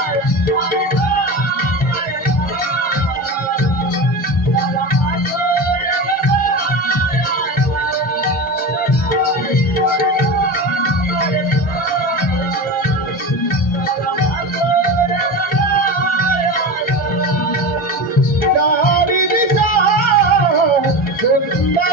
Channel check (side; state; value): both; normal; correlation 0.26